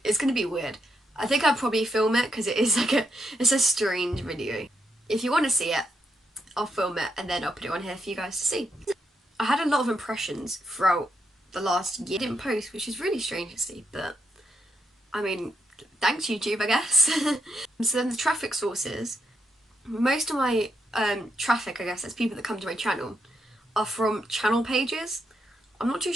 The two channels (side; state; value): both; normal; correlation 0.80